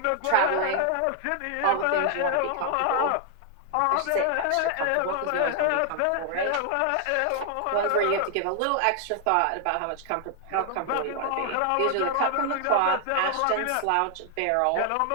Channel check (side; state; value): both; different; correlation 0.00